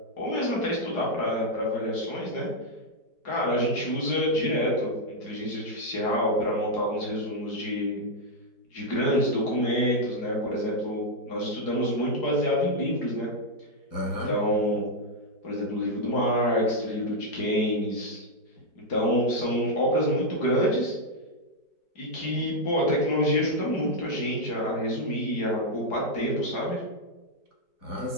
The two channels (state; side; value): late; right; 4.8 ms